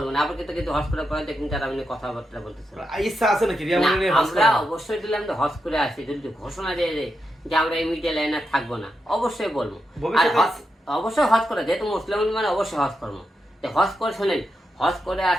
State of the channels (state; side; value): normal; both; correlation 0.86